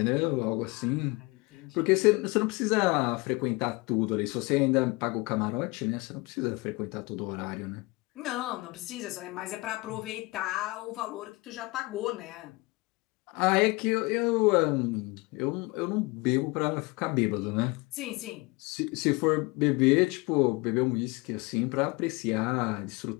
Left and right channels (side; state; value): right; quieter; 25.1 dB